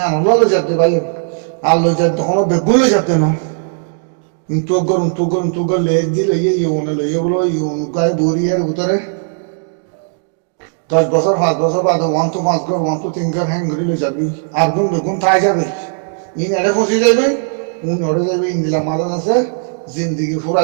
নলো যাতে ভাই আল্লো যাতে তখন বেগুন লো যাতে না কিন্তু গরম লেজ দিলে ইয়ে লইয়ে বলো ইউন গায়ে বড়ি আর উতরে 10 বছর 5 বছর বাদে 1 to 5 ঘর 1 to 3 ঘর হ্যাং করে যাবি আর বেগুন তাই যাবে ইন এড়ে ফসি যাবে উন ওড়ে যাবে ইন্দিলা মাদা আছে জিন্দিগি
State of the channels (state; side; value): silent; left; digital silence